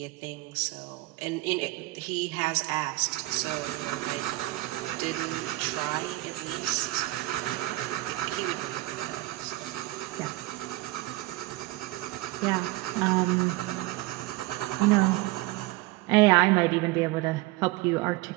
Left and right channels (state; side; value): quieter; left; 19.8 dB